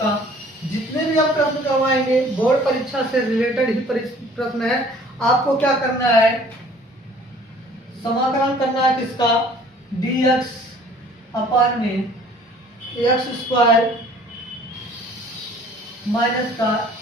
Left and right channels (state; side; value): normal; both; correlation 0.53